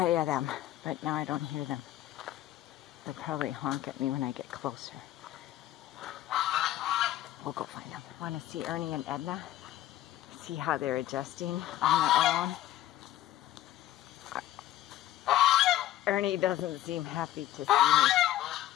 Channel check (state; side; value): quieter; right; 13.6 dB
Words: you them. But now I don't hear them. They'll probably honk at me when I get closer. We'll go find them. Want to see Ernie and Edna? See how they're adjusting on their own. Ernie doesn't seem happy to see me.